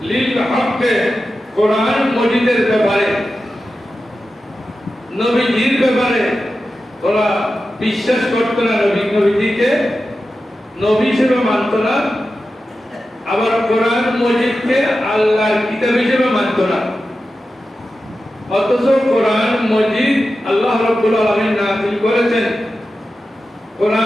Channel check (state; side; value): normal; both; correlation 0.92